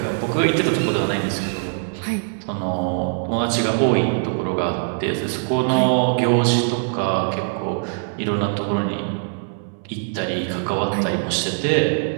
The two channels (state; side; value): silent; left; 64 dB below the other